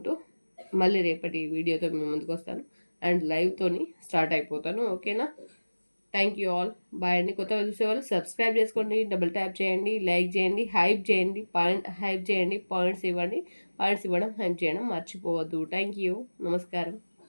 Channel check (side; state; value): both; inverted; correlation -1.00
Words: మళ్ళీ రేపటి వీడియోతో మీ ముందుకు వస్తాను అండ్ లైవ్తోని స్టార్ట్ అయిపోతాను. ఓకేనా? Thank you all. బాయ్ అండి. కొత్తగా చూసేవాళ్ళు సబ్స్క్రైబ్ చేసుకోండి, డబుల్ ట్యాప్ చేయండి, లైక్ చేయండి, హైప్ చేయండి, హైప్ చేయండి, పాయింట్స్ ఇవ్వండి. పాయింట్స్ ఇవ్వడం, హైప్ చేయడం మర్చిపోవద్దు. Thank you. నమస్కారం.